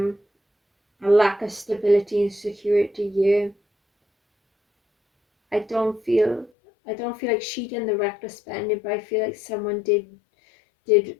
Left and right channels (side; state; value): right; drops out; at 6.5 s